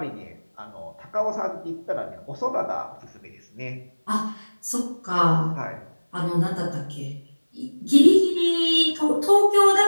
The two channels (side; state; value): both; inverted; correlation -1.00